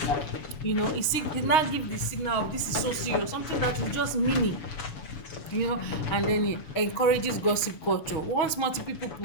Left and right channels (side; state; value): right; late; 6.4 ms